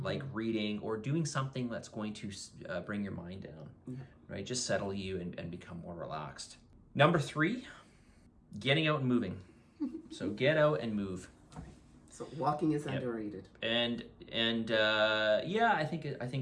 like reading or doing something that's going to bring your mind down, right? Just settle you and become more relaxed. Number 3, getting out and moving. So get out and move. So walking is underrated. And yeah, I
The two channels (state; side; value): identical; both; correlation 1.00